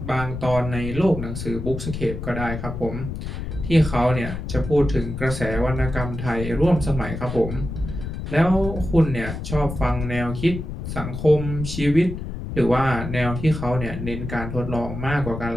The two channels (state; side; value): noise; left; rumble, 7 dB below the sound